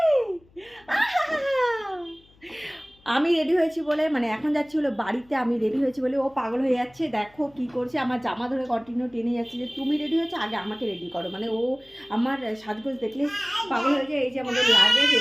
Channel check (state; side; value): noise; left; hum, 29 dB below the sound